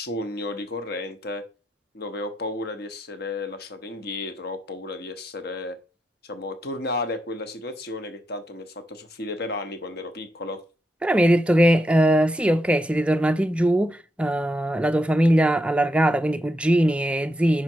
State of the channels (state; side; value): normal; both; correlation 0.83